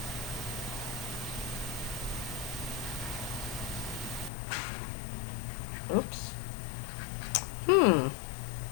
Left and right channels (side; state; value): right; drops out; at 4.3 s